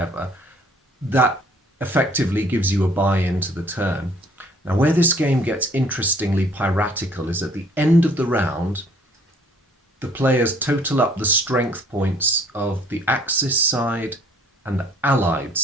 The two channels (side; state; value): both; normal; correlation 0.58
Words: That effectively gives you a buy-in to the turn. Now, where this game gets interestingly piratical is at the end of the round, the players total up the strength points of the Axis side and the Allied